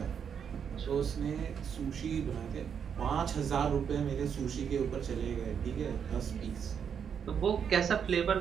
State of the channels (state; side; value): quieter; left; 7.5 dB